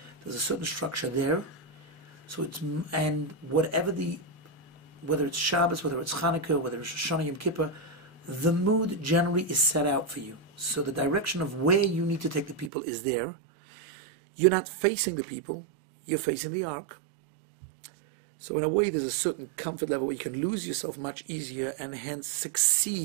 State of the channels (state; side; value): drops out; left; at 12.7 s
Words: there's a certain structure there. So whether it's Shabbos, whether it's Hanukkah, whether it's Rosh Hashanah, Yom Kippur, the mood generally is set out for you. So the direction of where you need to take the people is there. You're not facing the people, you're facing the ark. So in a way, there's a certain comfort level where you can lose yourself much easier and hence